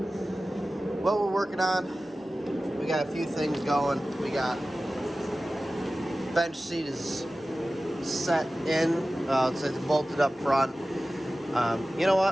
what we're working on, we got a few things going. We got bench seat is set in. It's bolted up front. You know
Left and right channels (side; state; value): both; normal; correlation 0.96